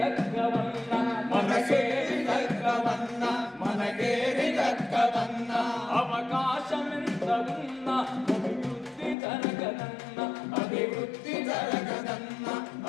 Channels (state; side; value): drops out; right; at 9.2 s